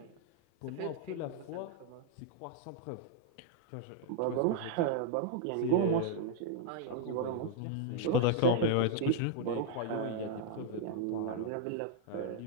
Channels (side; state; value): both; different; correlation 0.00